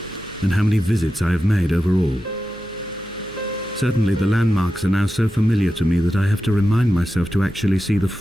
and how many visits I have made overall. Certainly the landmarks are now so familiar to me that I have to remind myself to actually see the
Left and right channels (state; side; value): noise; right; hum, 24 dB below the sound